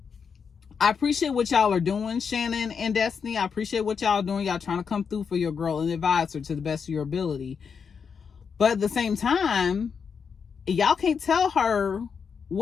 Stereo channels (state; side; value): quieter; right; 6.2 dB